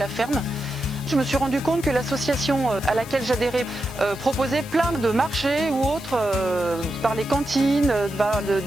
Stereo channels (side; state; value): left; noise; hiss, 18 dB below the sound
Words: ferme. Je me suis rendu compte que l'association à laquelle j'adhérais proposait plein de marchés ou autres par les cantines,